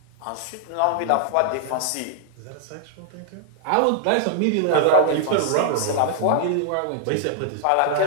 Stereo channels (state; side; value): different; both; correlation -0.01